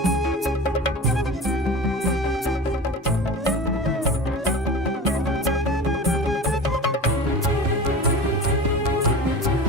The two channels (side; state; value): both; normal; correlation 0.33